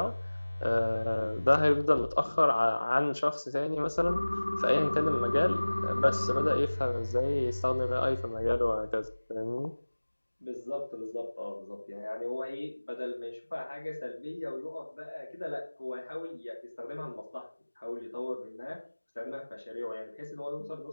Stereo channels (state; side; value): inverted; both; correlation -1.00